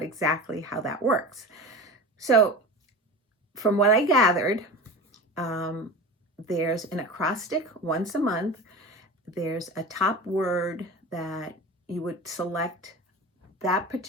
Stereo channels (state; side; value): normal; both; correlation 0.31